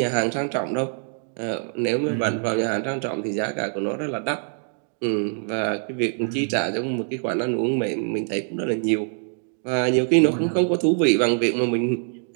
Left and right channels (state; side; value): silent; left; 57 dB below the other